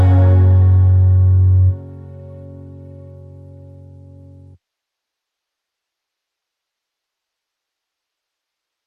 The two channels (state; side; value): identical; both; correlation 1.00